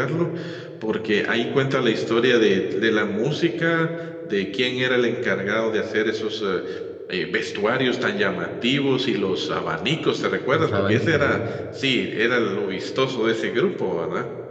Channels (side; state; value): both; identical; correlation 1.00